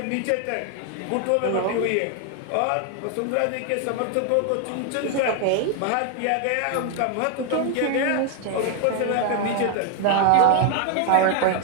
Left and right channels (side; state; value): both; different; correlation 0.01